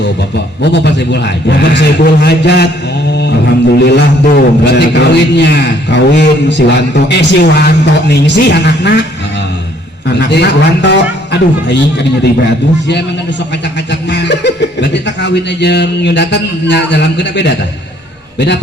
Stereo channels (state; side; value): normal; both; correlation 0.63